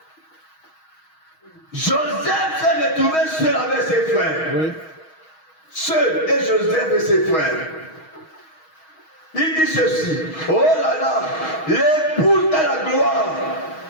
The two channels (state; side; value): late; right; 6.3 ms